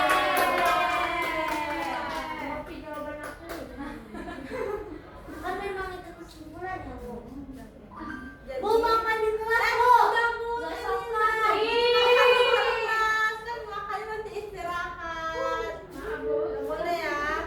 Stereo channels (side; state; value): both; identical; correlation 1.00